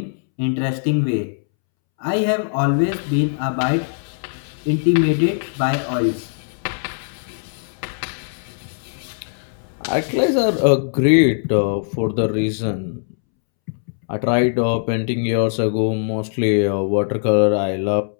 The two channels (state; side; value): silent; right; 65 dB below the other